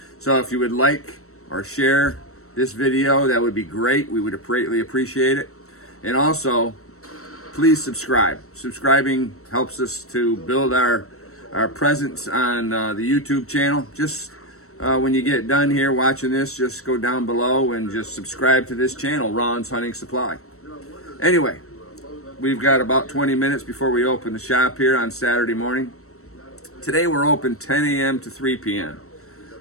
So if you would like or share this video, that would be great. We would greatly appreciate it. And also, please subscribe. Subscribing helps us to build our presence on the YouTube channel. Just when you get done here watching this, just go down below and just subscribe to this channel, Ron's Hunting Supply. Anyway, we've got about 20 minutes before we open the shop here on Saturday morning. Today we're open 10 a.m. to 3 p.m.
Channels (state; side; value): late; right; 0.64 ms